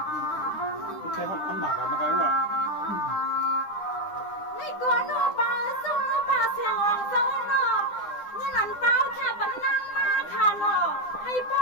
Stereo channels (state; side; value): late; right; 9.9 ms